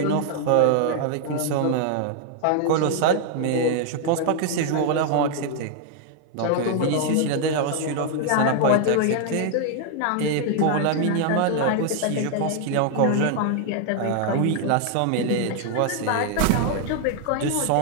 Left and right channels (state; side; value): different; both; correlation 0.00